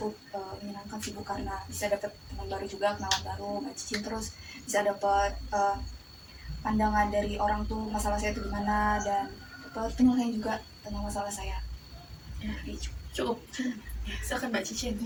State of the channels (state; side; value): identical; both; correlation 1.00